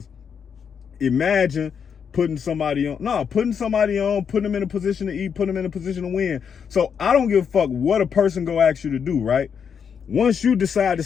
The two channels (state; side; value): quieter; right; 7.1 dB